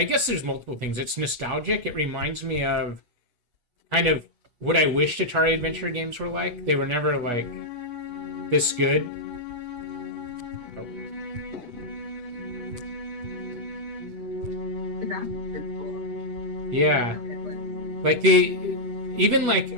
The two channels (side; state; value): left; late; 8.2 ms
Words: guess there's multiple things. It's nostalgic. It reminds me of kind of what I wished Atari Adventure games were like. They were never like this good. Yeah. Like even like